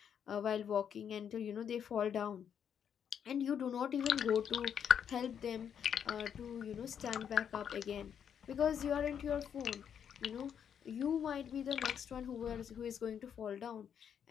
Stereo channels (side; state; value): right; quieter; 8.2 dB